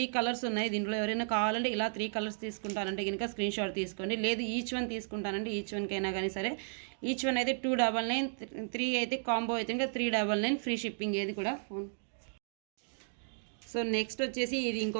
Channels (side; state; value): left; silent; digital silence